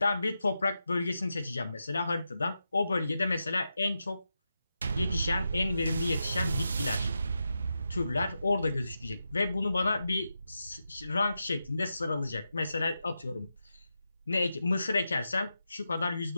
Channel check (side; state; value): both; inverted; correlation -0.88